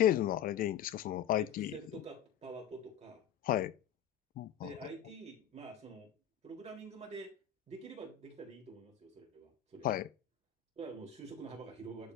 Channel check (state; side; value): quieter; right; 9.2 dB